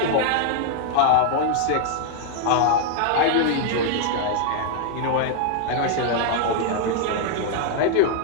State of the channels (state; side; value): different; both; correlation 0.00